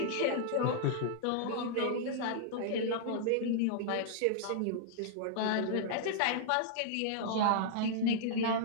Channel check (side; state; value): both; different; correlation -0.01